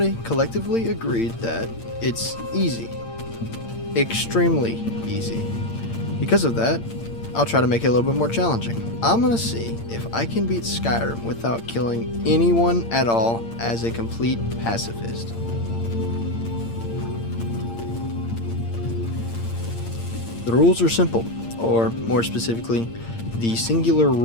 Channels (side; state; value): right; late; 8.7 ms